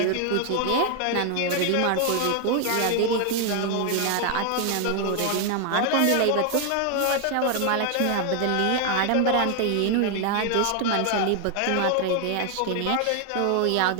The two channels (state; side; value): different; both; correlation 0.01